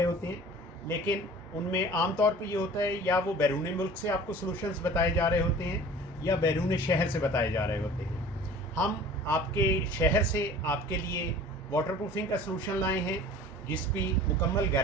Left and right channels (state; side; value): normal; both; correlation 0.44